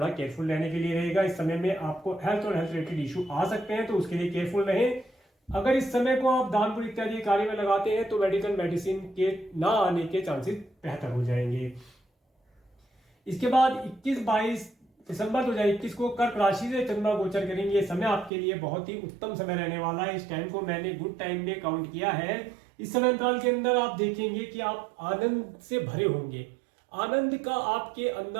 केयरफुल रहने के लिए रहेगा। इस समय में आपको हेल्थ और हेल्थ रिलेटेड इशू आ सकते हैं, तो उसके लिए केयरफुल रहें। अगर इस समय को आप दान पुण्य इत्यादि कार्य में लगाते हैं तो मेडिसिन के ना आने के चांसेस बेहतर हो जाएंगे। इसके बाद 21-22 दिसंबर 2021 को कर्क राशि से चंद्रमा गोचर करेंगे। समय आपके लिए बहुत ही उत्तम समय रहने वाला है। इस टाइम को मैंने गुड टाइम में काउंट किया है। इस समय अंतराल के अंदर आप देखेंगे कि आप आनंद से भरे होंगे, आनंद का आपके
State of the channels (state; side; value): drops out; left; at 18.3 s